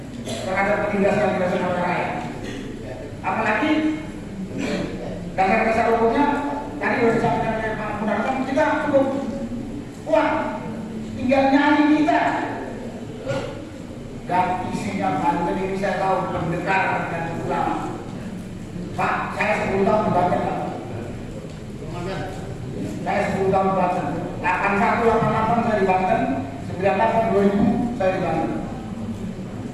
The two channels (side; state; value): both; identical; correlation 1.00